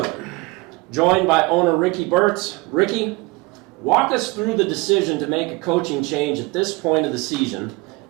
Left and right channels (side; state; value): left; quieter; 24.0 dB